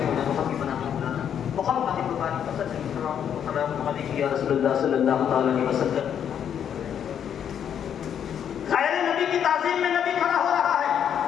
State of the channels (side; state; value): right; quieter; 8.8 dB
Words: وحبیبنا محمد مبارک صلی اللہ علیہ یا رسول اللہ صلی اللہ علیہ وسلم۔ غیر نبی کی تعظیم میں نبی کھڑا ہو رہا ہے،